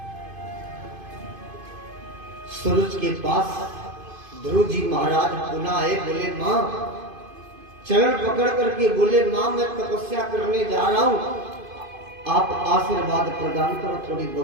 सूरज के पास ध्रुव जी महाराज पुनः आए, बोले मां, चरण पकड़ करके बोले, मां मैं तपस्या करने जा रहा हूं, आप आशीर्वाद प्रदान करो। थोड़ी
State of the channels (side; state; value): left; late; 2.5 ms